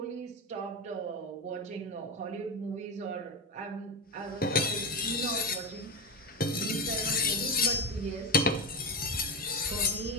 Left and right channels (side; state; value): both; normal; correlation 0.15